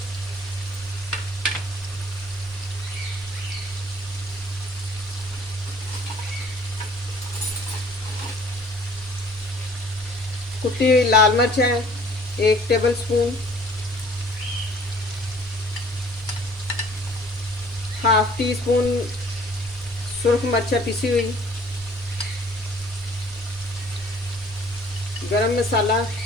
कुटी हुई लाल मिर्च है 1 tablespoon. Half teaspoon सुरख मिर्च पिसी हुई। गरम मसाला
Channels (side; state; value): both; normal; correlation 0.54